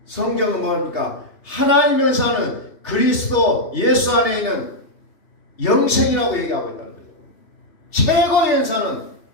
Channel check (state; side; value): late; right; 2.8 ms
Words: 성경은 뭡니까? 하나님의 은사는 그리스도 예수 안에 있는 영생이라고 얘기하고 있다는 거죠. 최고의 은사는